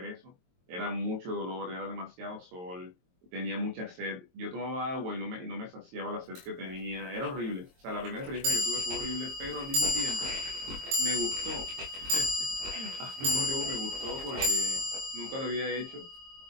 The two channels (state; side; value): late; left; 22 ms